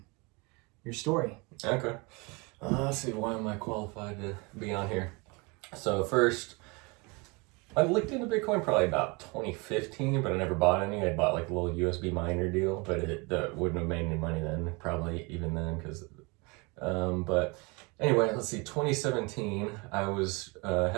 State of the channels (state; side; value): quieter; left; 28.0 dB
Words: your story. Okay. Let's see, why am I qualified to be on here? So first, I looked into Bitcoin probably about 2015, but I never bought any. I bought like a little USB miner deal, but it wouldn't have made any money then, probably even then, because but anyway, let's see, 2017, I was